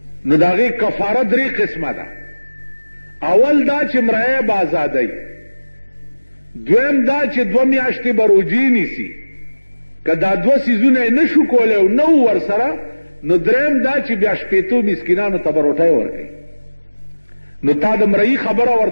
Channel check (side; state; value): both; inverted; correlation -1.00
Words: نو د هغې کفاره 3 قسمه ده. اول دا چې مریه به ازادی، دویم دا چې 2 میاشتې به روجې نیسي، که دا 2 څیزونه یې نه شو کولی او نه و ورسره نو دریم دا چې بیا 80 مسکینانو ته به روټۍ ورکوي. نو تا د مرئی خبره